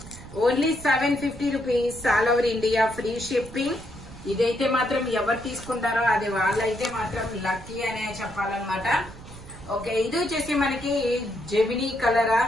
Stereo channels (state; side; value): noise; right; rumble, 16 dB below the sound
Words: Only 750 rupees all over India free shipping. ఇదైతే మాత్రం ఎవరు తీసుకుంటారో అది వాళ్ళైతే మాత్రం లక్కీ అనే చెప్పాలన్నమాట. ఓకే, ఇది వచ్చేసి మనకి జెమినీ కలరా,